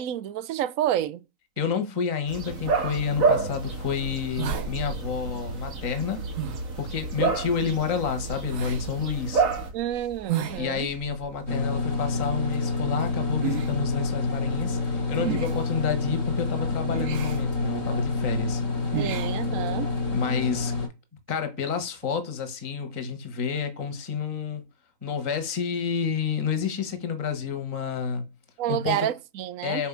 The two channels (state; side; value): late; left; 3.9 ms